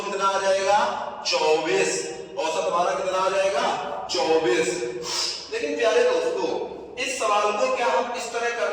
कितना आ जाएगा? 24। औसत हमारा कितना आ जाएगा? 24। लेकिन प्यारे दोस्तों इस सवाल को क्या हम इस तरह कर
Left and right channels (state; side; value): identical; both; correlation 1.00